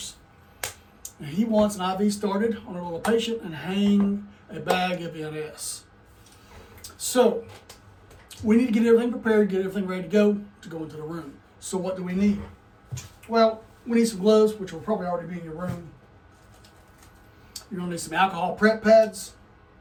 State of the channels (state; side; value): identical; both; correlation 1.00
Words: And he wants an IV started on a little patient and hang a bag of NS. So we need to get everything prepared, get everything ready to go into the room. So what do we need? Well, we need some gloves, which will probably already be in your room. You're going to need some alcohol prep pads,